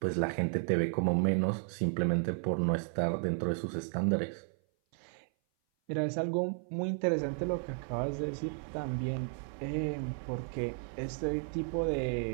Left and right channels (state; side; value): silent; left; 55 dB below the other